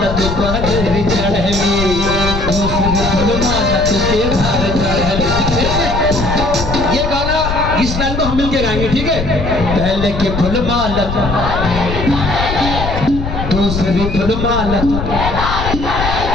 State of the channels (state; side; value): noise; left; rumble, 4 dB below the sound